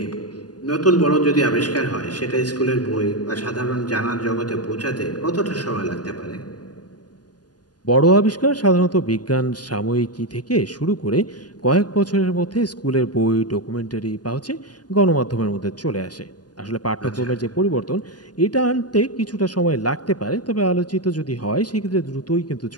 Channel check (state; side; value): late; right; 0.69 ms